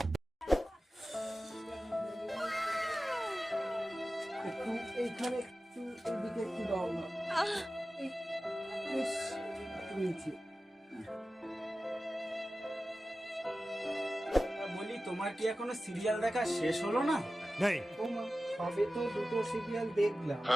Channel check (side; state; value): both; normal; correlation 0.95